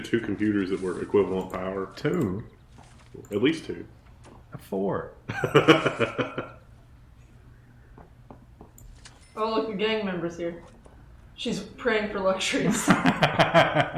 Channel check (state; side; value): identical; both; correlation 1.00